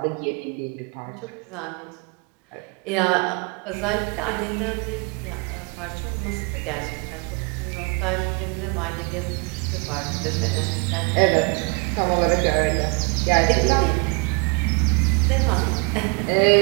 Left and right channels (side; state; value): left; quieter; 32.6 dB